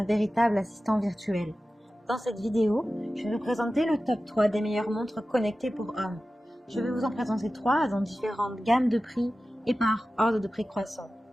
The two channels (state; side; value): normal; both; correlation 0.95